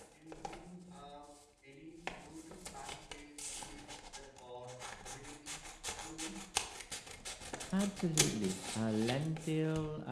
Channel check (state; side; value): identical; both; correlation 1.00